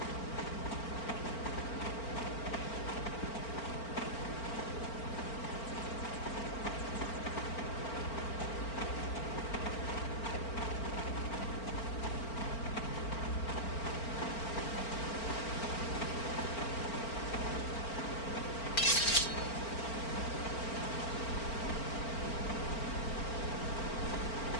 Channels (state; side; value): late; right; 4.4 ms